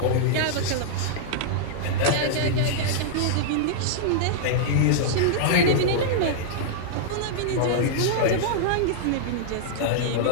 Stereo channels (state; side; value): different; both; correlation -0.02